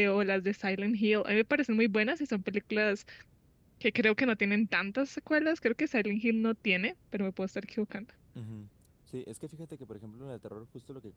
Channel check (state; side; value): identical; both; correlation 1.00